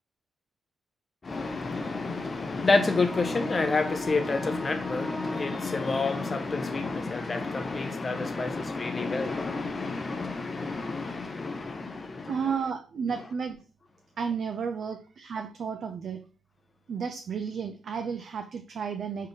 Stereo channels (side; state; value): both; normal; correlation 0.86